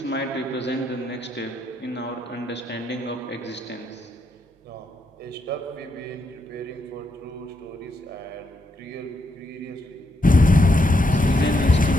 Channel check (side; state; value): both; normal; correlation 0.79